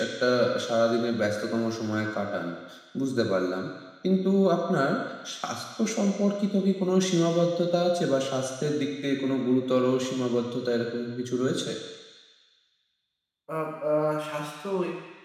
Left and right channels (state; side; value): identical; both; correlation 1.00